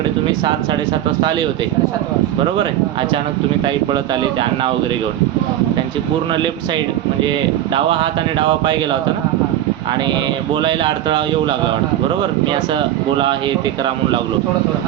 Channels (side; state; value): left; quieter; 12.4 dB